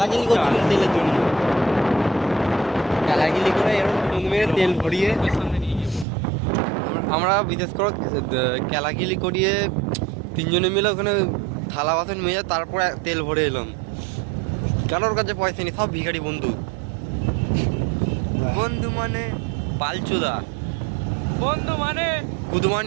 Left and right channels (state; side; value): drops out; left; at 6.1 s